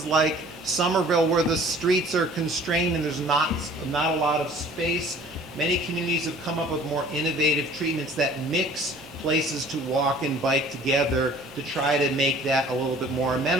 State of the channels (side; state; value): both; normal; correlation 0.51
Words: like Somerville, where the streets are constrained and there's not a lot of space, many communities have come up with more innovative treatments that mix places to walk and bike together to try to make that a little bit more